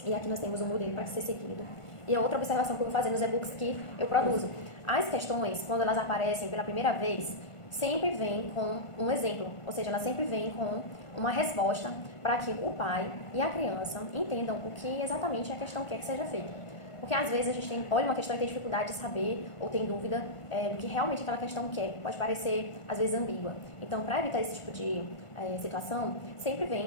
E aqui nós temos um modelo para ser seguido. E a outra observação que eu vou fazer nos e-books que eu produzo. As questões, quando elas aparecem pela primeira vez, sempre vem com um exemplo, ou seja, ela sempre vem com uma resposta para que o pai e a criança entendam o que exatamente a questão quer que seja feito. Porque às vezes a gente olha uma questão e tem dificuldade de saber ou tem dúvida do que realmente aquela questão quer. Pode parecer, às vezes, ambígua. Então, para evitar esse tipo de situação, sempre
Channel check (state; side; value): late; right; 1.5 ms